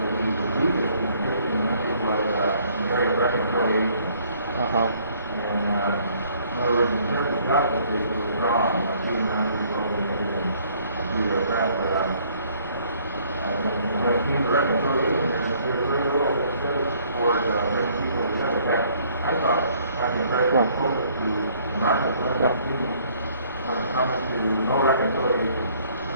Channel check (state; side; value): inverted; both; correlation -0.62